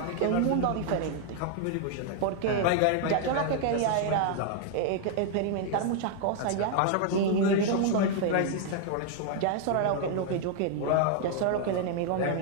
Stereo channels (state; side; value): different; both; correlation 0.00